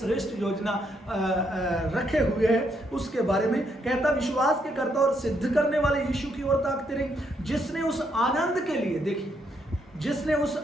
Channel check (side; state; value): both; normal; correlation 0.75